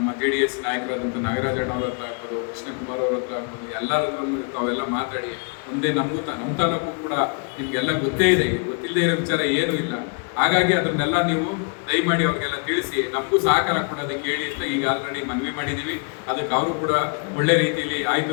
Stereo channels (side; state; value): right; quieter; 38.3 dB